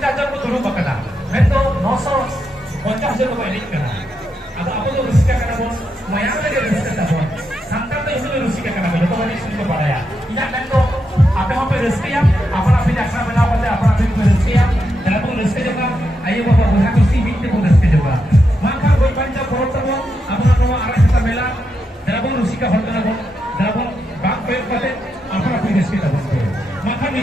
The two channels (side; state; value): both; normal; correlation 0.84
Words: ko dulu bakana मैं तो 950,000 ko ini kana atau apa tu rezeki kana bon mayang lagi rezeki tabon santan tu itu rezeki kana bon itu kan itu padaya tidak मैं तो apa apa rezeki ya apa apa jaksa bela pada apa apa rezeki ya dalam pun rezeki juga ayo bapak buat kursi binti pun rezeki juga maka boy panca korot tabo apa nama arah kita bela dalam pun rezeki hotel tabo dalam pun bank pay pada apa apa rezeki tabo maka